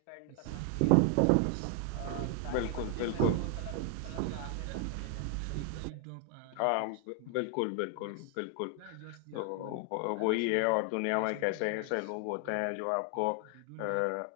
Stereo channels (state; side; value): different; both; correlation 0.00